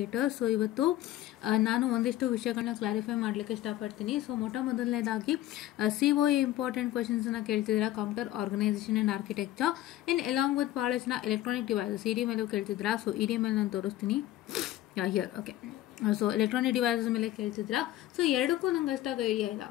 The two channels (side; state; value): right; quieter; 14.3 dB